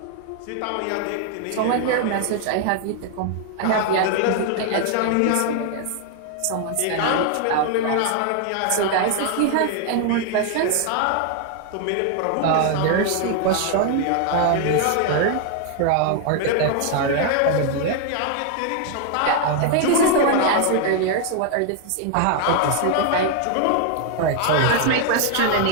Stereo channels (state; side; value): different; both; correlation 0.00